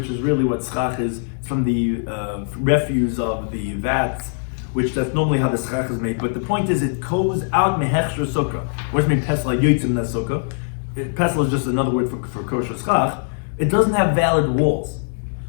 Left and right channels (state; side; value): silent; right; digital silence